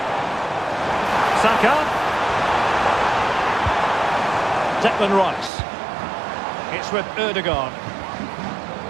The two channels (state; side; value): drops out; left; at 5.5 s